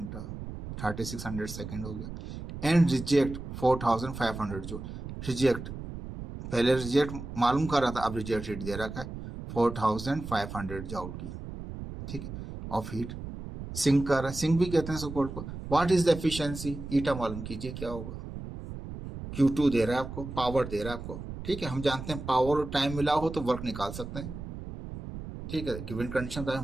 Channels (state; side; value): noise; right; rumble, 9 dB below the sound